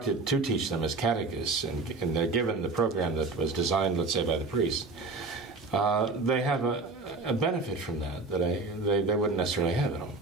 to teach them as catechists, and they're given the program that was designed, let's say, by the priest, they have a benefit from that they wouldn't necessarily have at home.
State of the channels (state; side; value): quieter; left; 3.7 dB